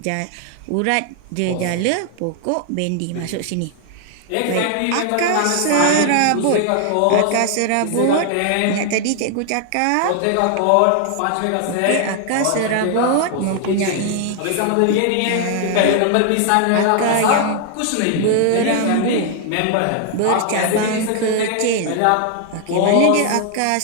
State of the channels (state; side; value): different; both; correlation 0.00